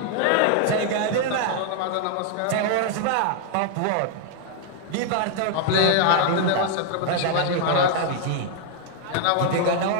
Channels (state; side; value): different; both; correlation 0.00